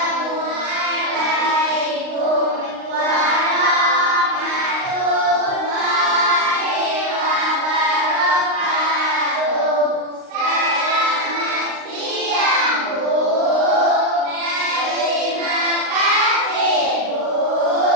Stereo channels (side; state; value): left; late; 39 ms